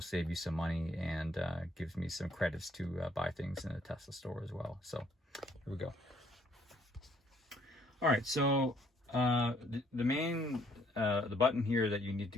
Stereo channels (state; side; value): normal; both; correlation 0.65